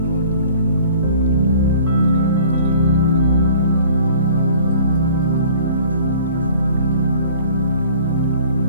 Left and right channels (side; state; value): both; inverted; correlation -0.49